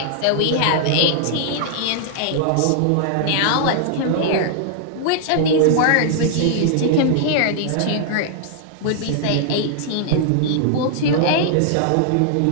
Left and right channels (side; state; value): both; different; correlation -0.01